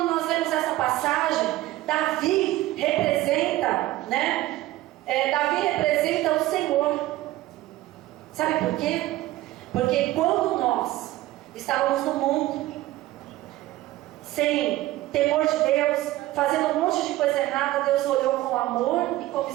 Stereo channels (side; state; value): left; quieter; 16.4 dB